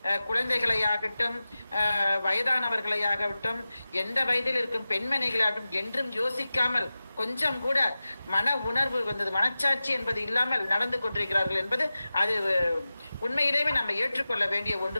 குழந்தைகளையாகட்டும், வயதானவர்களையாகட்டும், எந்த வயதில் இருக்கும் பெண்மணிகளாகட்டும் என்றும் யோசிக்காமல் கொஞ்சம் கூட மன உணர்வு வந்தது, மனச்சாட்சி என்பது இல்லாமல் நடந்து கொண்டிருக்கிறார்கள் என்பது அது உண்மையிலேயே நம்ம ஏற்றுக்கொள்ள வேண்டிய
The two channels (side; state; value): both; inverted; correlation -0.95